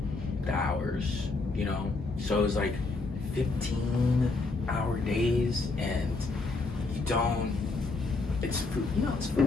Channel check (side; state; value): right; quieter; 3.6 dB